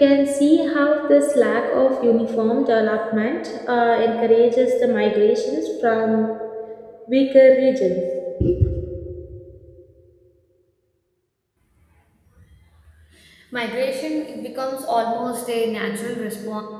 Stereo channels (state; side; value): identical; both; correlation 1.00